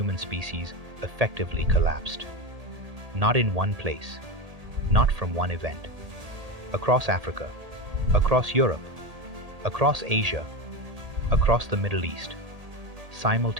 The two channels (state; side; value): late; left; 1.8 ms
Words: species effectively collapsed. Not in one place, not from one event. Across Africa, across Europe, across Asia, across the Middle East,